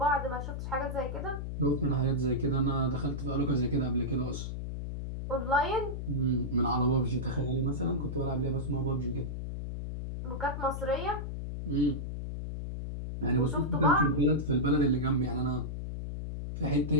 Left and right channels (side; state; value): left; noise; hum, 5 dB below the sound